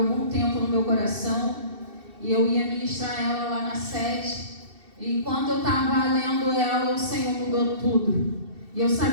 tempo no meu coração. E eu ia ministrar ela lá na sede. E enquanto eu estava lendo ela, o Senhor mudou tudo. E eu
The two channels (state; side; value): late; left; 2.7 ms